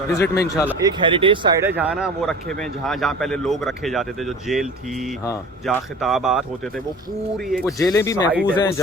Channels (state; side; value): normal; both; correlation 0.39